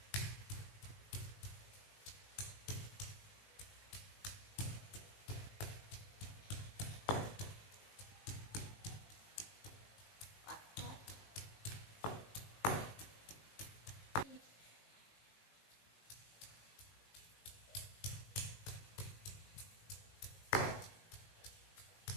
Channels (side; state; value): right; late; 19 ms